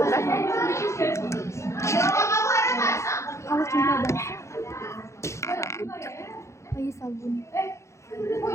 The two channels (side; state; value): right; late; 0.14 ms